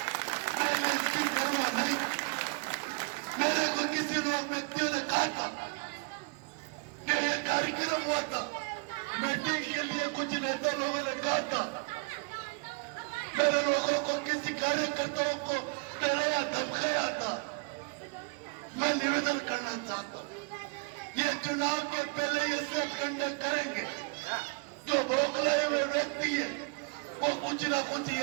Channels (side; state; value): left; quieter; 31.4 dB